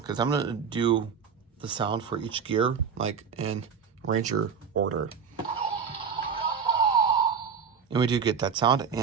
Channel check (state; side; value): quieter; left; 6.4 dB